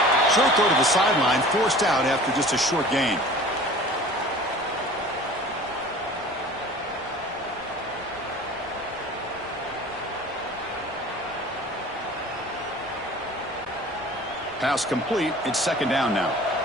Short throw to the sideline, forced out after just a short gain. Pass complete. It's second down now.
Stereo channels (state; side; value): noise; left; rumble, 26 dB below the sound